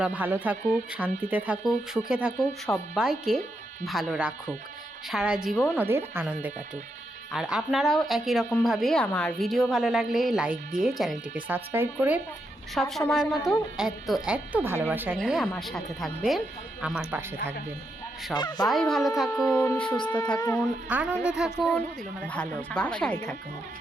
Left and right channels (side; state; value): both; normal; correlation 0.82